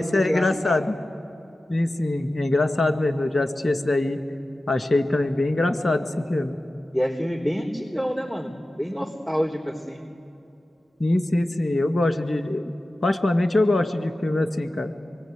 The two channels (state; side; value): normal; both; correlation 0.95